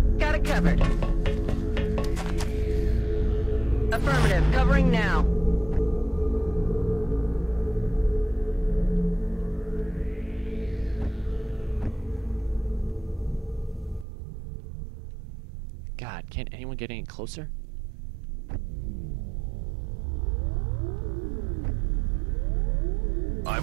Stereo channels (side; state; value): left; drops out; at 14.1 s